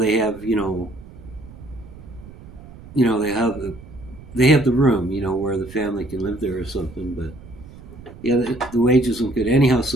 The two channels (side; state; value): right; noise; rumble, 18 dB below the sound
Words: have they have the room where the family can live there or something. But yeah, the wages weren't good anyhow.